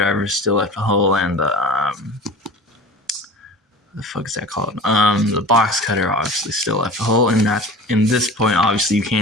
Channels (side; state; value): both; normal; correlation 0.37